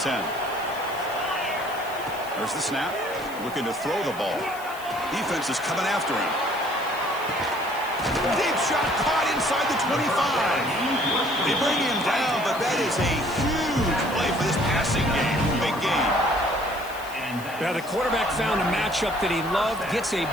There's the snap. Looking to throw the ball. Defense is coming after him. Deep shot caught inside the 25. They bring him down, but that is a huge play for this passing game. Big game. Now the quarterback found a matchup that he loved, gets a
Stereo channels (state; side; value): noise; left; hiss, 18 dB below the sound